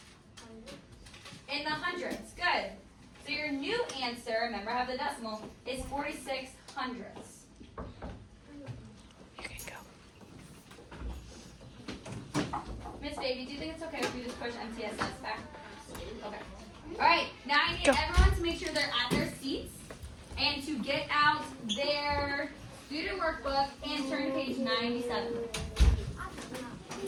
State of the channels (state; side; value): identical; both; correlation 1.00